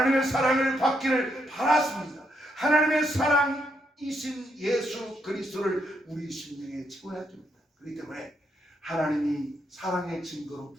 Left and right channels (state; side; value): normal; both; correlation 0.77